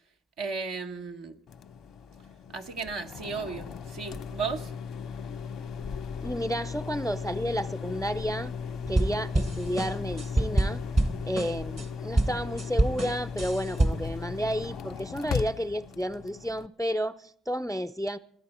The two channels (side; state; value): both; normal; correlation 0.86